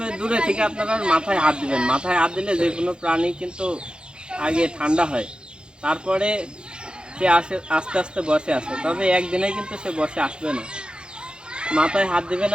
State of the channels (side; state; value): left; late; 0.050 ms